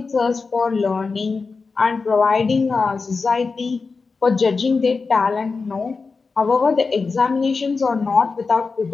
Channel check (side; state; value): right; quieter; 4.4 dB